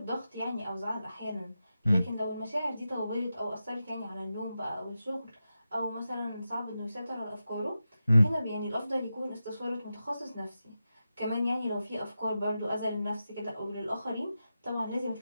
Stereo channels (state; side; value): inverted; both; correlation -0.91